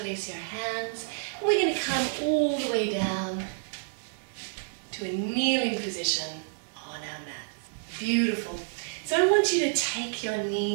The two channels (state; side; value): silent; left; digital silence